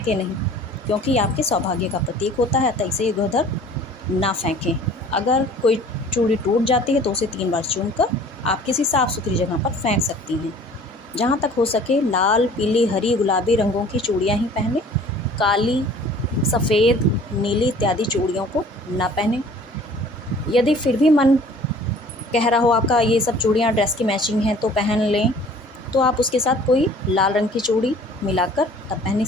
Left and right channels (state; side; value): normal; both; correlation 0.50